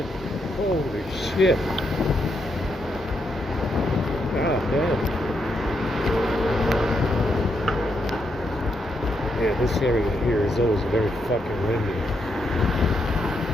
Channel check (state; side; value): normal; both; correlation 0.80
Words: Holy shit. God damn. Yeah, this area here is always very fucking windy.